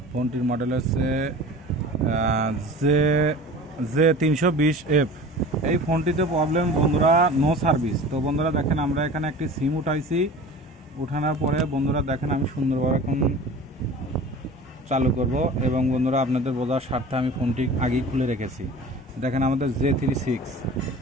ফোনটির মডেল হচ্ছে জে জে 320F। এই ফোনটিতে প্রবলেম বন্ধুরা, নো সার্ভিস। তো বন্ধুরা দেখেন, আমরা এখানে একটি সিম উঠাইছি। উঠানোর পরে বন্ধুরা দেখেন, আমি সুন্দরভাবে এখন চালু করব এবং বন্ধুরা আপনাদের বোঝার স্বার্থে আমি ফোনটি আগেই খুলে রেখেছি। দেখেন আমাদের J36,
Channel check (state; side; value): normal; both; correlation 0.39